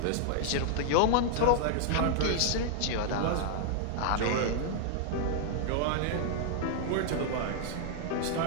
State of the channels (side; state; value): both; different; correlation 0.00